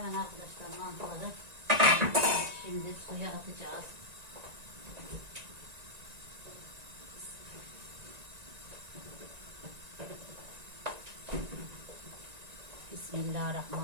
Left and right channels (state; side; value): late; left; 1.9 ms